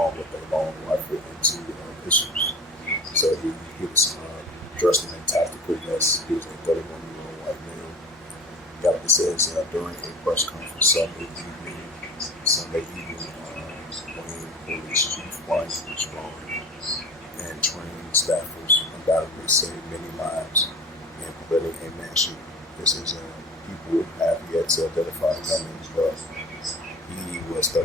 with a long rifle and two pistols. So he was dressed in a tactical vest. He was a 31-year-old white male. Got it says during a press conference Sunday evening, Wayne Police Chief Brian Strong and training staffers undoubtedly saved many lives in preventing a mass shooting. This is people have yet to identify gunmen, but he was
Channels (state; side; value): normal; both; correlation 0.37